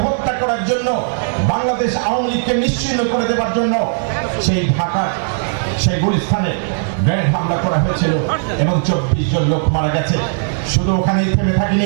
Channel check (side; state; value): left; silent; digital silence